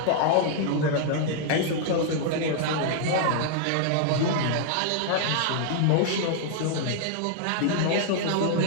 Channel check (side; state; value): both; different; correlation -0.01